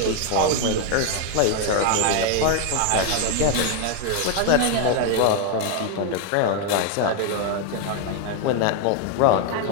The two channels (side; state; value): both; different; correlation 0.01